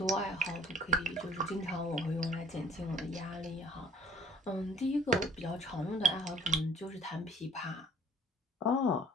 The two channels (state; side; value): normal; both; correlation 0.54